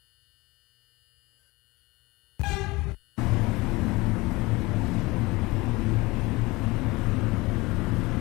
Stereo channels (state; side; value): quieter; right; 22.4 dB